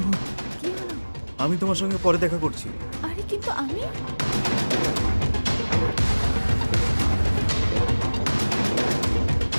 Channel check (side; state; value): both; inverted; correlation -1.00